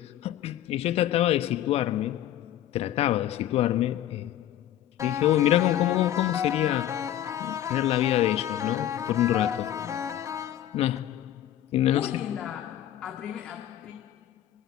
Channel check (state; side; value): quieter; right; 12.0 dB